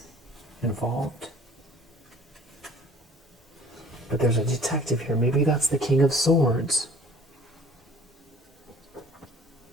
involved. But there's a detective here. Maybe that's the King of Swords.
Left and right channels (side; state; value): both; normal; correlation 0.51